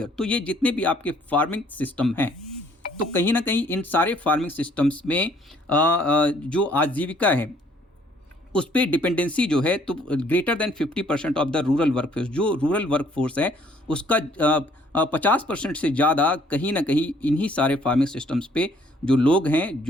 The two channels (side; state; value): both; normal; correlation 0.62